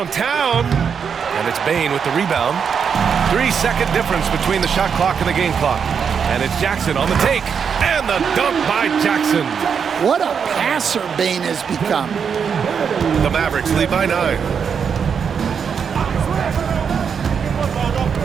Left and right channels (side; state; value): left; quieter; 6.8 dB